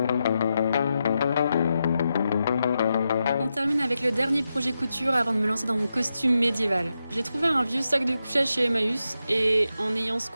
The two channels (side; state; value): both; inverted; correlation -0.87